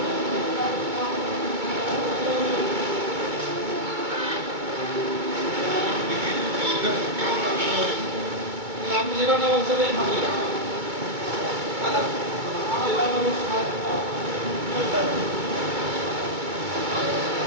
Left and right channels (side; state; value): left; late; 2.2 ms